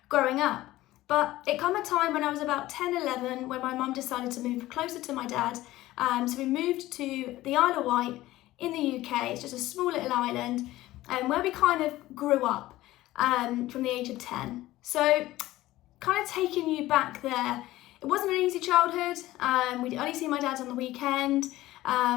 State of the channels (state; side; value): quieter; right; 16.5 dB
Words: growing up. But it came a time when I was about 10, 11, when my mum decided to move closer to my dad. So we moved to the Isle of Wight in the UK. It's just a small little island where we kind of grew up from the age of 10. So kind of taking you back there, it wasn't an easy childhood. We'd only see my dad on the weekend.